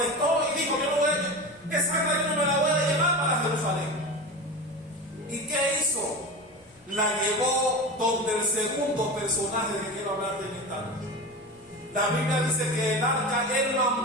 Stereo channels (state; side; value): normal; both; correlation 0.27